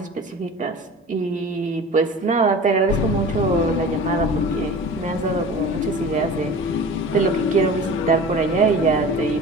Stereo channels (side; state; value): both; normal; correlation 0.38